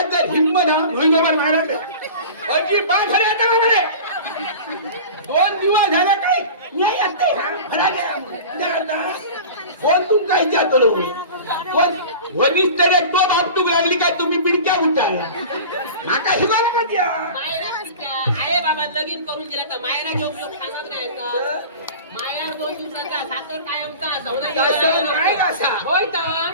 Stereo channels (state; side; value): inverted; both; correlation -0.37